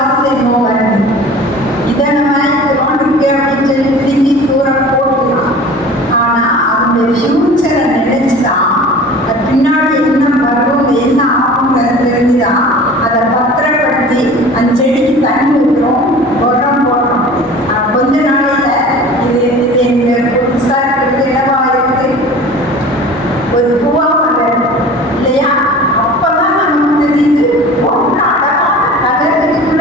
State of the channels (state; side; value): normal; both; correlation 0.41